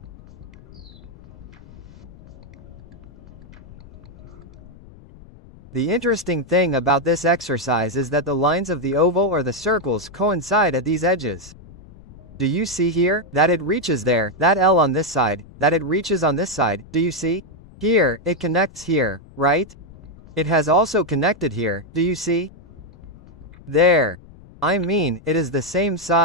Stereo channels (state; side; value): noise; left; rumble, 21 dB below the sound